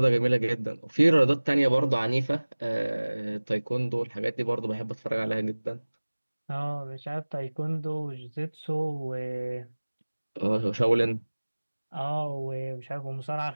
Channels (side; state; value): both; inverted; correlation -1.00